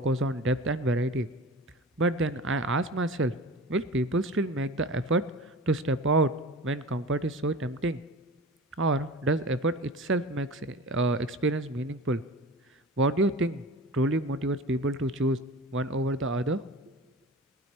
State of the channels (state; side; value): normal; both; correlation 0.35